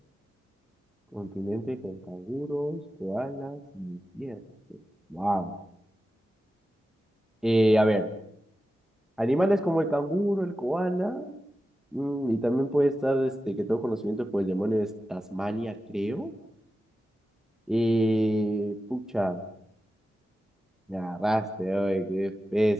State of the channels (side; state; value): both; normal; correlation 0.92